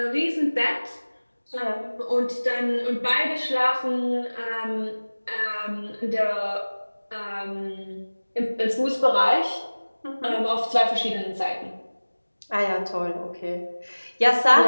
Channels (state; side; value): inverted; both; correlation -1.00